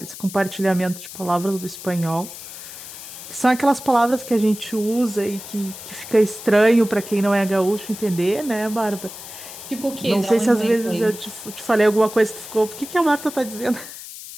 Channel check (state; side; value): noise; left; hiss, 13 dB below the sound